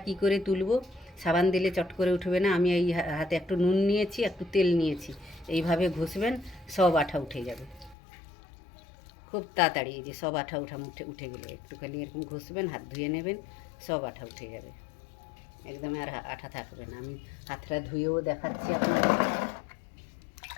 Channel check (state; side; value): drops out; right; at 8.0 s